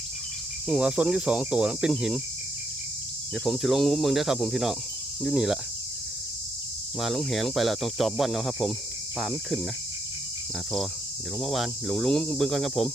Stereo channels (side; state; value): both; normal; correlation 0.76